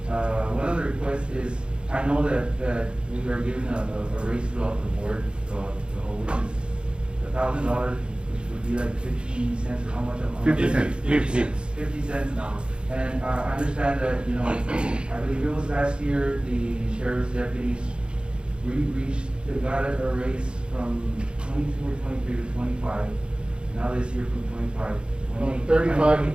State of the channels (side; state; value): left; late; 0.054 ms